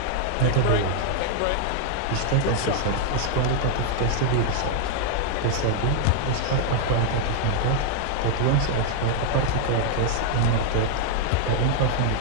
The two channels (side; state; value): both; different; correlation 0.00